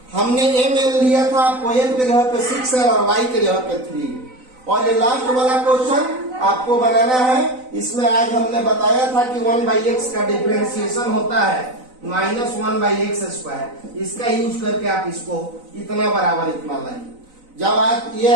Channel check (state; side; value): late; left; 4.0 ms